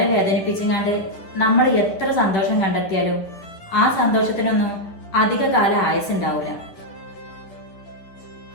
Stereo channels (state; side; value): late; right; 10 ms